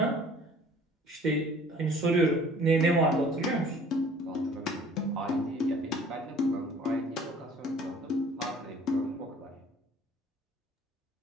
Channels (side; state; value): both; normal; correlation 0.52